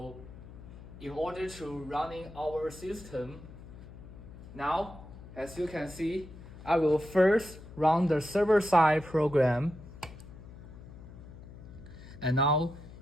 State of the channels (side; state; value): left; noise; hum, 16 dB below the sound